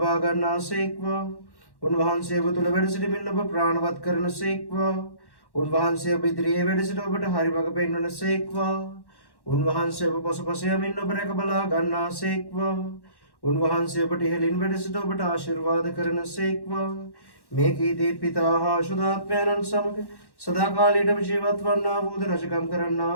ගන්නාසේක්වා. උන්වහන්සේ ඔබ තුළ වැඩ සිටමින් ඔබ ප්‍රාණවත් කරනසේක්වා. උන්වහන්සේ ඔබ ඉදිරියේ වැඩ සිට ඔබට හරි මඟ පෙන්වනසේක්වා. උන්වහන්සේ ඔබ පසුපස යමින් ඔබ රැක බලා ගන්නාසේක්වා. උන්වහන්සේ ඔබට ඉහළින් වැඩ සිට ඔබට ආශිර්වාද කරනසේක්වා. මේ කීදී පිතා හා ශුද්ධාත්මයන්න් සමග සදාකාලයටම ජීවත් වන්නා වූද රජකම් කරන්නා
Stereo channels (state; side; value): late; right; 1.1 ms